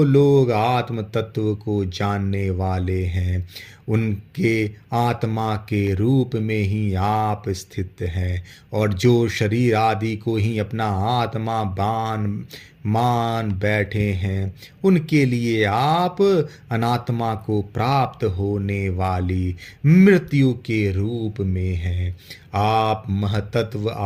लोग आत्म तत्व को जानने वाले हैं, उनके आत्मा के रूप में ही आप स्थित हैं, और जो शरीर आदि को ही अपना आत्मा मान बैठे हैं, उनके लिए आप अनात्मा को प्राप्त होने वाली मृत्यु के रूप में हैं। आप महतत्व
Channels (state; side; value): identical; both; correlation 1.00